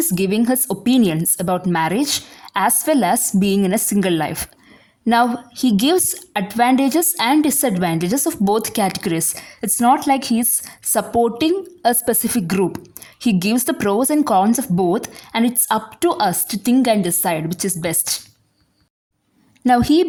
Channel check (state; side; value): identical; both; correlation 1.00